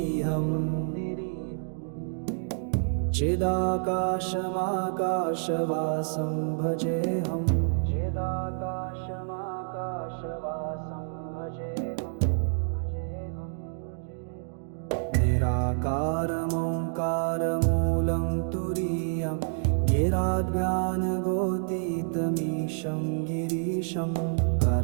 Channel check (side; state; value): left; silent; digital silence